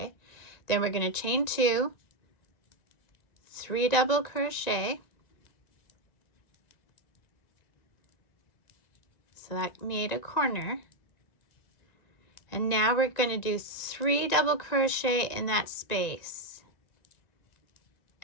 Then we're going to chain 2, 3 double crochet. So that made a corner. And now we're going to do 3 double crochet in that space.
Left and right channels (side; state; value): right; late; 1.9 ms